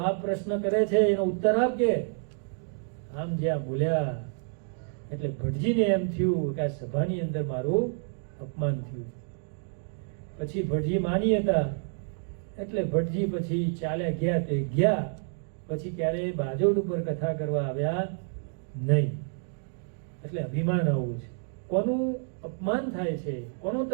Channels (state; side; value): silent; left; 57 dB below the other